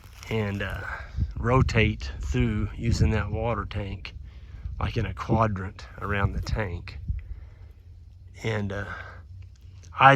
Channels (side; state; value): both; identical; correlation 1.00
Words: and rotate through using that water tank like in a quadrant around the tank. And